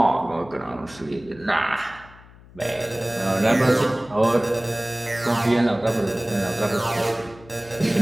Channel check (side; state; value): left; noise; hum, 22 dB below the sound